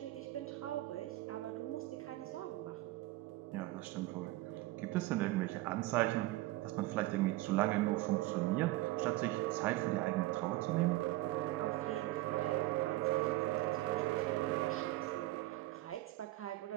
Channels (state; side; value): quieter; left; 17.9 dB